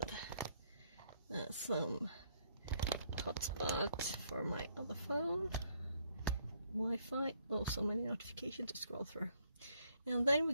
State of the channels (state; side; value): inverted; both; correlation -0.69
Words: And some hotspot for my other phone. Wi-Fi. Oh, so many notifications to scroll through. And then we're